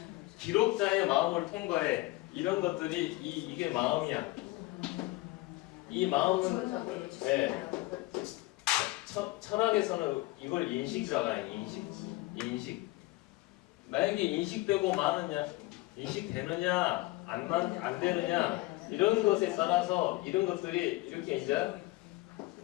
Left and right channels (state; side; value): quieter; right; 20.3 dB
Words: 기록자의 마음을 통과해. 이런 것들이 이게 마음이야. 이 마음은 철학에서는 이걸 인식이라고 해요. 인식. 만약에 인식되고 마느냐, 인식되느냐, 안 되느냐 이런 것에 따라서 이런 것들이 이렇게 이제